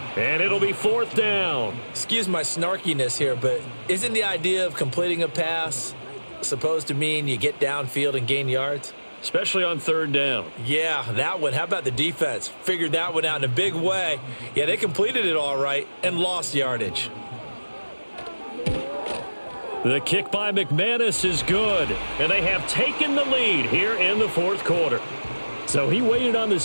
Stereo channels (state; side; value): inverted; both; correlation -1.00